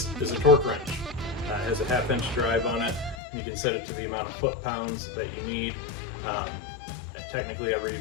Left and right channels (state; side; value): drops out; right; at 3.2 s